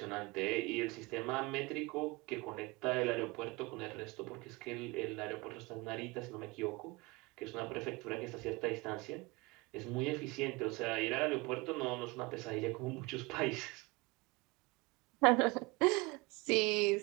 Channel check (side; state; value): left; quieter; 25.0 dB